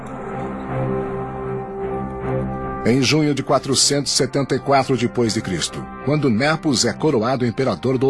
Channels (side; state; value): both; identical; correlation 1.00